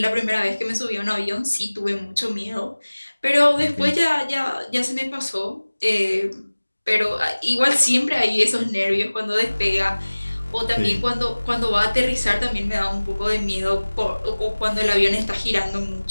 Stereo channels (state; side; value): inverted; both; correlation -1.00